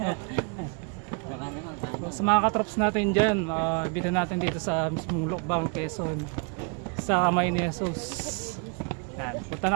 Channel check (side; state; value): left; quieter; 35.7 dB